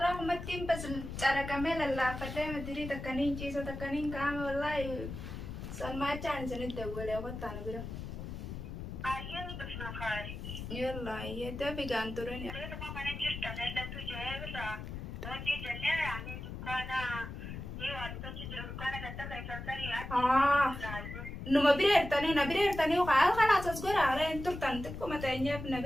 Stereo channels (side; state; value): left; noise; rumble, 8 dB below the sound